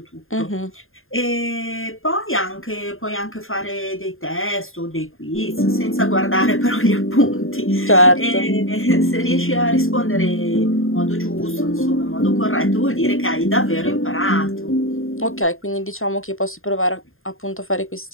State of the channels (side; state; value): right; late; 0.60 ms